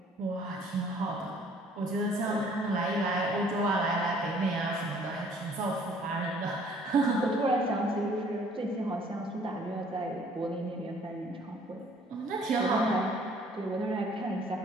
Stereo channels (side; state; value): both; normal; correlation 0.58